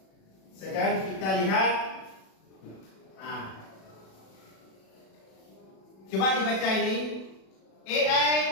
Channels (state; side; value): late; right; 37 ms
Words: Sekarang kita lihat. Coba dibaca ini. AI